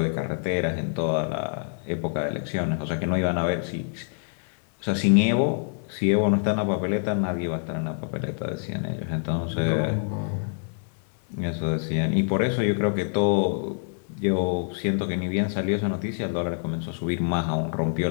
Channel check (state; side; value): silent; right; 59 dB below the other